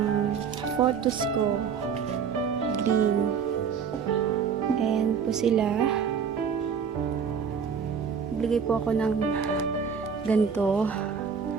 photos ko. Green. Ayan po sila. Naglagay po ako ng ganito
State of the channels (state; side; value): quieter; left; 6.6 dB